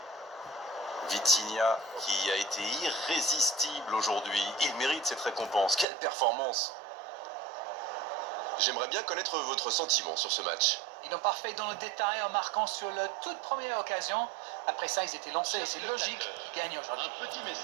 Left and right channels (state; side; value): drops out; left; at 5.9 s